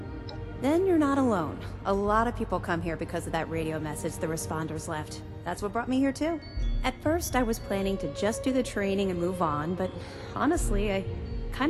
Then you're not alone. A lot of people come here because of that radio message the responders left. That's what brought me here too. At first, I was planning to just do the training and move on, but honestly, I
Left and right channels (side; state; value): both; identical; correlation 1.00